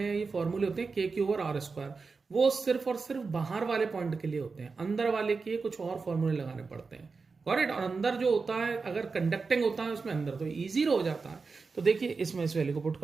ये फॉर्मूले होते हैं KQ ओवर R स्क्वायर, वो सिर्फ और सिर्फ बाहर वाले पॉइंट के लिए होते हैं, अंदर वाले के कुछ और फॉर्मूले लगाने पड़ते हैं, करेक्ट। और अंदर जो होता है, अगर कंडक्टिंग होता है उसमें अंदर, तो इजी हो जाता है। तो देखिए इसमें इस वैल्यू को पुट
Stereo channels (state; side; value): quieter; left; 4.5 dB